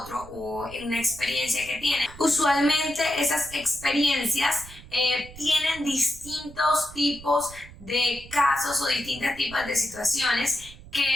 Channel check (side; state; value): right; noise; rumble, 18 dB below the sound